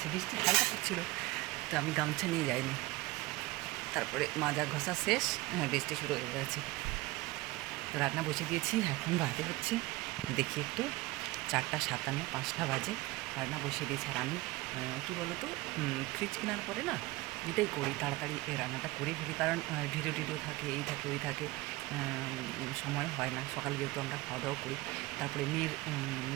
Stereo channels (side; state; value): left; quieter; 20.5 dB